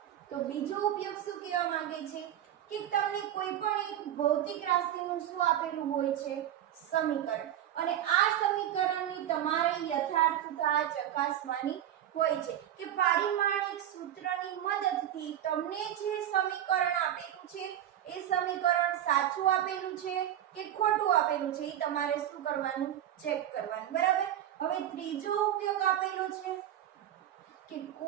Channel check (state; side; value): quieter; left; 11.5 dB